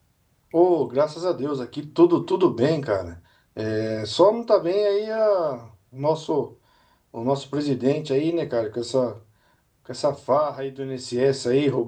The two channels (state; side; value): identical; both; correlation 1.00